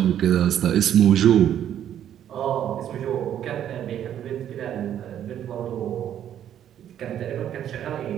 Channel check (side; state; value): left; quieter; 10.3 dB